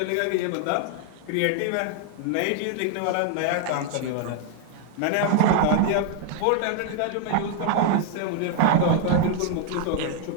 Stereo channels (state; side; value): different; both; correlation 0.00